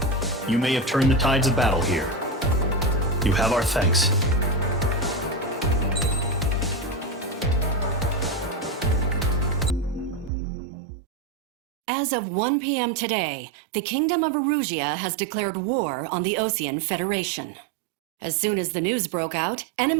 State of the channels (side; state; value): left; drops out; at 10.3 s